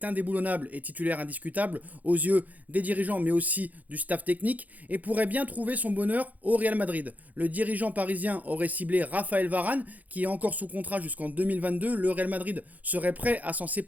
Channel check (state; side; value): late; left; 0.079 ms